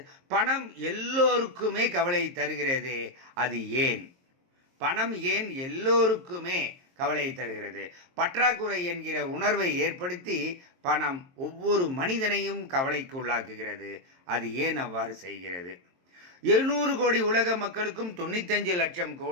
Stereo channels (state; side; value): late; left; 23 ms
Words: பணம் எல்லோருக்குமே கவலை தருகிறதே, அது ஏன்? பணம் ஏன் எல்லோருக்குமே கவலையை தருகிறது? பற்றாக்குறை என்கிற உணர்வை ஏற்படுத்தி பணம் ஒவ்வொரு மனிதனையும் கவலைக்கு உள்ளாக்குகிறது. அது ஏன் அவ்வாறு செய்கிறது? 700 கோடி உலக மக்களுக்கும் 95 லட்சம்